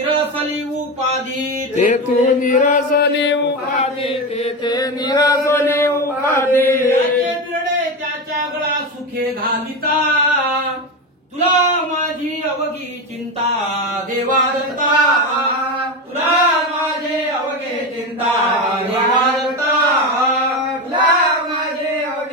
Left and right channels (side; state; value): both; normal; correlation 0.18